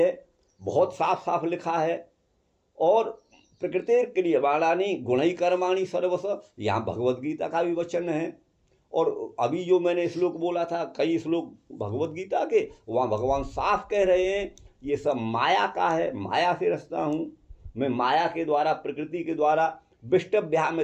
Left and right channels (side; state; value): both; identical; correlation 1.00